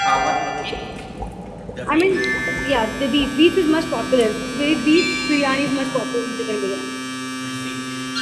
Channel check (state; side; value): identical; both; correlation 1.00